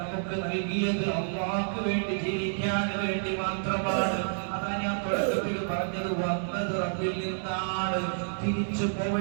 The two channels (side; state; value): left; silent; 58 dB below the other